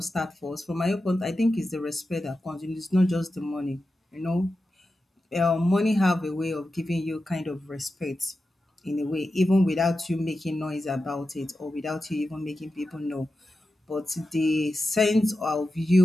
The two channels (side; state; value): both; normal; correlation 0.91